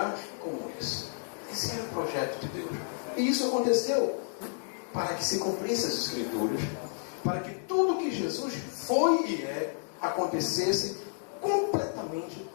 como esse? Esse era o projeto de Deus. E isso aconteceu para que se cumprisse as Escrituras, para que tudo que Jesus foi e é, acontecesse completamente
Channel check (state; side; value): silent; right; 57 dB below the other